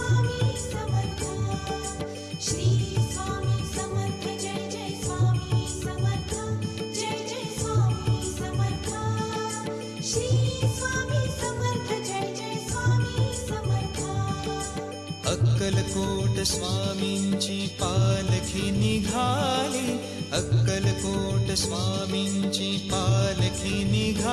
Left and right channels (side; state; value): both; identical; correlation 1.00